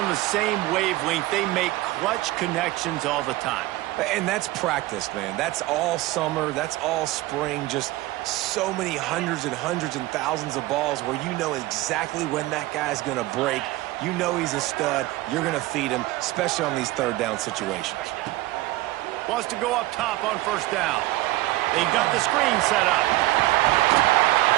the same wavelength, they make clutch connections all the time. And that's practice, man. That's all summer. That's all spring. Just so many hundreds and thousands of balls where you know exactly when that guy's going to break. You know he's a stud. You're going to feed him, especially on these third down situations. Wants to go up top on first down. They've got the screen set up.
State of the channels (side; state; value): left; quieter; 18.1 dB